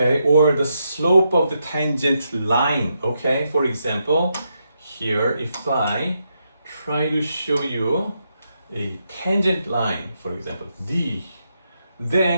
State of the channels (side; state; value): both; inverted; correlation -0.82